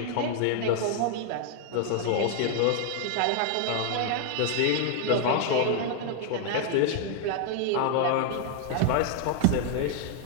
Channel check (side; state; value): both; different; correlation 0.00